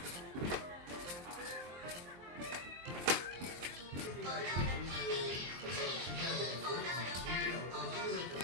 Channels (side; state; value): left; late; 23 ms